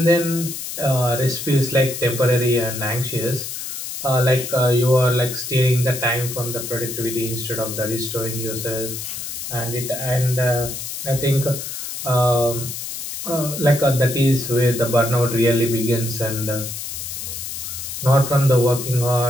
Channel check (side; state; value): left; noise; hiss, 7 dB below the sound